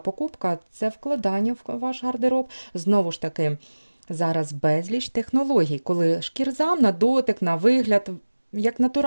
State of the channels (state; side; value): inverted; both; correlation -1.00